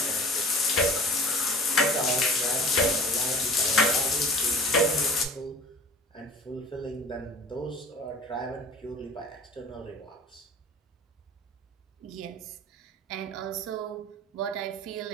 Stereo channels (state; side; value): normal; both; correlation 0.43